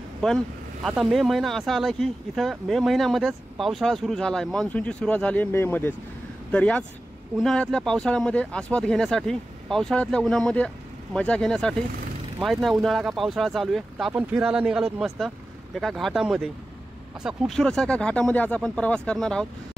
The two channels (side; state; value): both; normal; correlation 0.94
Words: पण आता मे महिना असा आला की इथं मे महिन्यामध्येच पावसाळा सुरू झाला आहे. मान्सूनची सुरुवात झाली आहे मेमध्येच. तर याच उन्हाळ्यातल्या पावसाळ्यामध्ये आस्वाद घेण्यासाठी, पावसाळ्यातल्या उन्हामध्ये मजा घेण्यासाठी, माहीत नाही उन्हाळा का पावसाळा चालू आहे, तर आपण फिरायला निघालोत मस्त एका घाटामध्ये. असा खूपसूरत एका घाटामध्ये आज आपण प्रवास करणार आहोत.